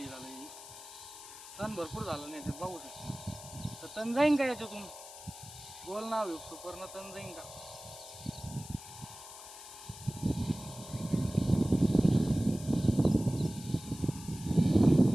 झालं, तण भरपूर झालं नाही तर बघू शकता. तर तण जाईन का याच्यातून? गोल नाव एक सुपरनं, तण जाईन का?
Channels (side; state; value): left; noise; hiss, 15 dB below the sound